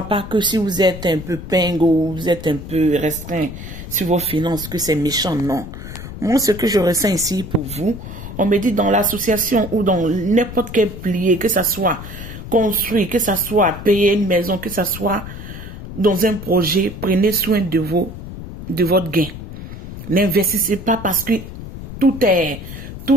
pas que si vous êtes un peu pingo ou vous êtes un peu restreint sur vos finances, que c'est méchant, non. Moi, ce que je ressens ici pour vous, on me dit dans l'association ou dans n'importe quel pilier, que ça soit construit, que ça soit payer une maison, que ça soit dans un projet, prenez soin de votre gain. N'investissez pas parce que tout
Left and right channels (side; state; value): left; noise; rumble, 11 dB below the sound